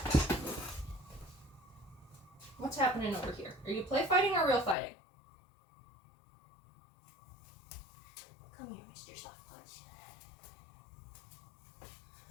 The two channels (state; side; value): drops out; right; at 4.8 s